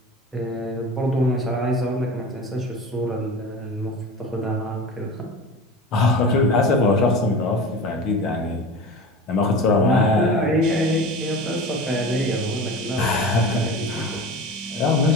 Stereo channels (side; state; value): both; normal; correlation 0.33